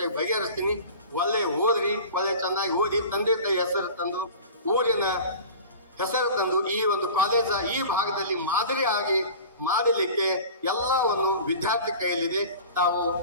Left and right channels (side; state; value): both; inverted; correlation -0.39